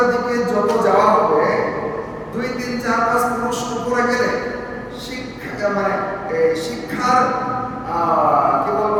দিকে যত যাওয়া হবে, 2, 3, 4, 5 ক্রোশ উপরে গেলে শিক্ষার কি বলবো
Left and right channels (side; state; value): both; identical; correlation 1.00